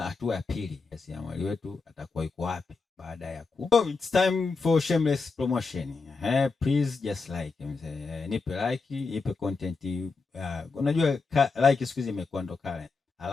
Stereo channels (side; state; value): right; quieter; 4.3 dB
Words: ya pili, jasiriamali wetu atakuwa yuko wapi baada ya So it's time for shameless promotion. Please just like nipe like, nipe content. Unajua like siku hizi imekuwa ndo kale.